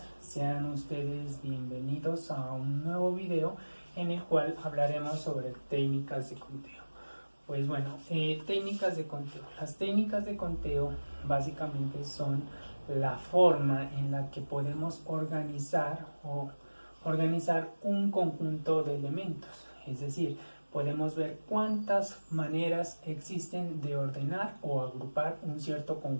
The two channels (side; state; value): both; inverted; correlation -1.00